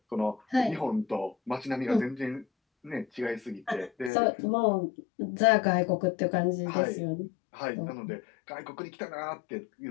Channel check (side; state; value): right; drops out; at 4.1 s